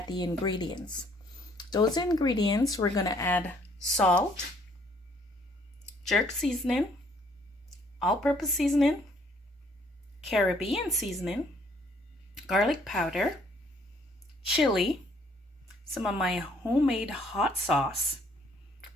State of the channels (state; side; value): normal; both; correlation 0.63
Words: the ingredients. Those ingredients, we're going to add salt, jerk seasoning, all-purpose seasoning, Caribbean seasoning, garlic powder, chili, some of my homemade hot sauce,